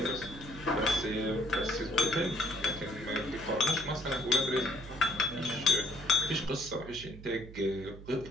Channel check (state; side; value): noise; right; hum, 15 dB below the sound